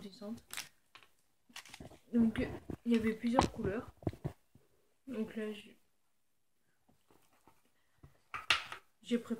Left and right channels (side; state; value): both; identical; correlation 1.00